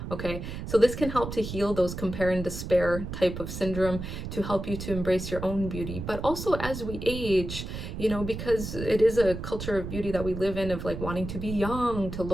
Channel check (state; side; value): noise; right; rumble, 7 dB below the sound